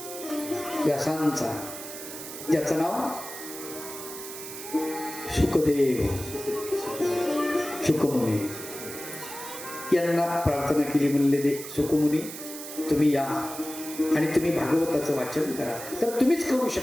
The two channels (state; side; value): noise; right; hiss, 10 dB below the sound